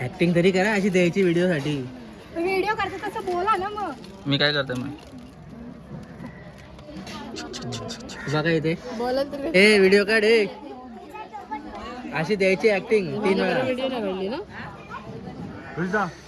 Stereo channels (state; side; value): identical; both; correlation 1.00